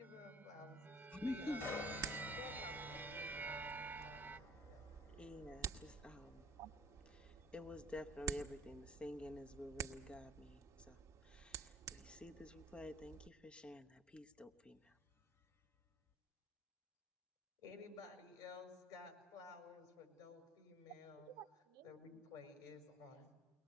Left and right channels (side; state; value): both; normal; correlation 0.53